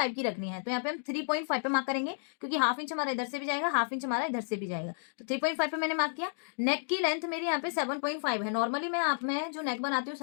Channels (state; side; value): silent; right; digital silence